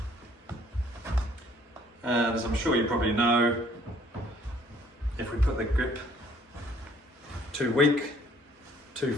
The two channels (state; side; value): normal; both; correlation 0.59